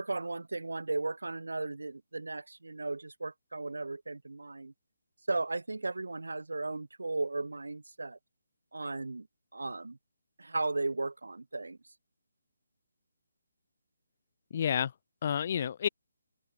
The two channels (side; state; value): both; inverted; correlation -0.87